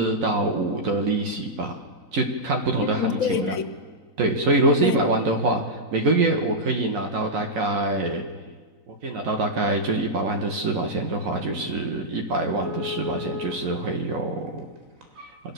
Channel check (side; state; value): left; late; 3.9 ms